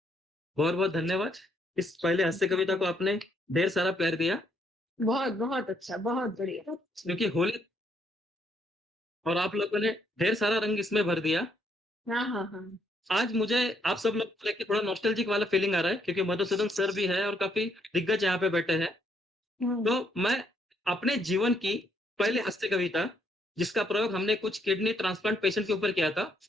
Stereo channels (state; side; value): normal; both; correlation 0.72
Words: बहुत बहुत धन्यवाद। इस पहले हास्य कविता को आपने ढेर सारा प्यार दिया, बहुत बहुत अच्छा, बहुत बढ़िया। क्योंकि होली और आप लोगों ने ढेर सारा रंग इसमें भर दिया। हाँ। आज मुझे आप सब लोग को लेके थोड़ा नॉस्टैल्जिक वाला फीलिंग आ रहा है, क्योंकि मधुसूदन सर भी है और काफी दिग्गज यहाँ पे बैठे हैं। तो मैं अपने जीवन की पहली हास्य कविता, जिसका प्रयोग हमने कुछ किडनी ट्रांसप्लांट पेशेंट के ऊपर किया था